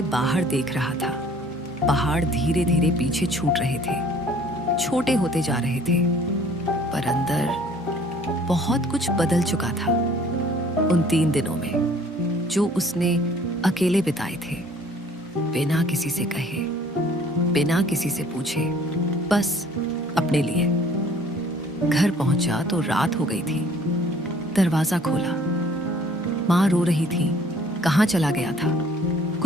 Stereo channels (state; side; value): normal; both; correlation 0.55